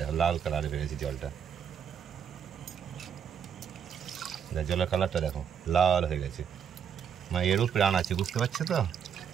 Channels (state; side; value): quieter; left; 7.9 dB